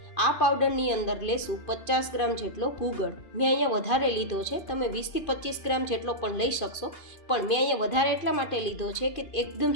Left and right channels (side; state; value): right; late; 2.5 ms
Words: આ પાવડરની અંદર લેશું 50 ગ્રામ જેટલો ગુગળ. મેં અહીંયા વધારે લીધો છે, તમે 20 થી 25 ગ્રામ જેટલો પણ લઈ શકશો, પણ મેં અહીંયા વધારે એટલા માટે લીધો છે કે એકદમ